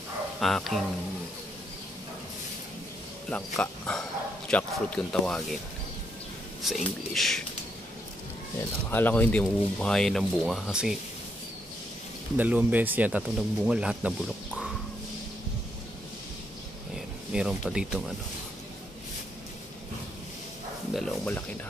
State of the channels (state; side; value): normal; both; correlation 0.76